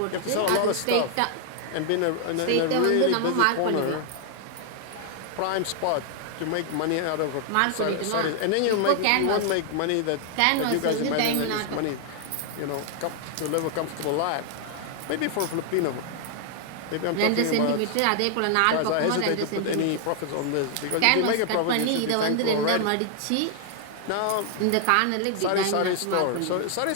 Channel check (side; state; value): both; different; correlation 0.00